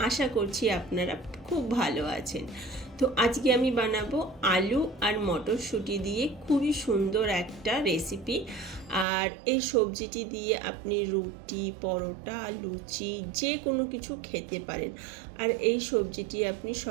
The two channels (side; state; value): left; drops out; at 9.1 s